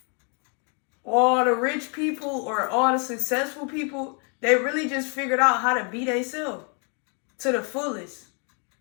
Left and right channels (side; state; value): right; quieter; 38.3 dB